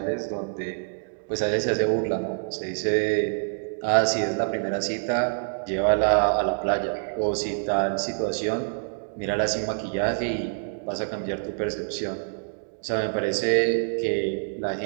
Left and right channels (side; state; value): left; silent; digital silence